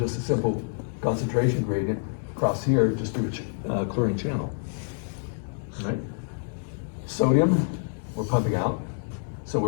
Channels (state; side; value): silent; right; 60 dB below the other